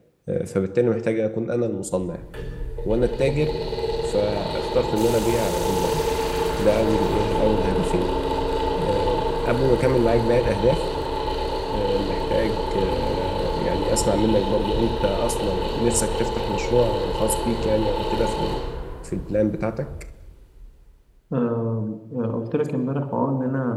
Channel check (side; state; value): both; identical; correlation 1.00